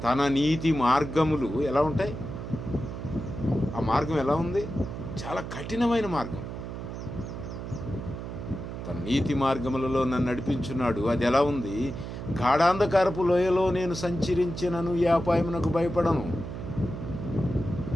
తన నీతి మార్గములు ఎలా ఉంటాయి? ఆ మార్గం ఎలా ఉంది? చాలా కఠినమైన మార్గం. తన నీతి మార్గములలో నన్ను నడిపించున్నాడు. అది ఎలా ఉంది? గాఢాంధకారపు లోయలో నేను సంచరించినను ఏ అపాయమునకు భయపడను.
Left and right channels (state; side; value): noise; right; hum, 8 dB below the sound